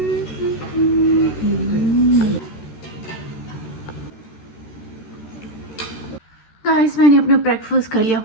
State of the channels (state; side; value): late; right; 14 ms